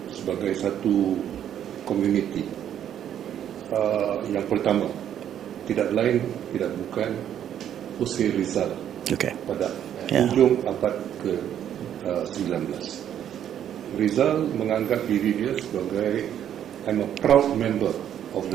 sebagai satu komuniti yang pertama tidak lain tidak bukan Jose Rizal pada ujung abad ke-19. Rizal menganggap diri dia sebagai I'm a proud member of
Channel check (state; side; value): quieter; left; 10.1 dB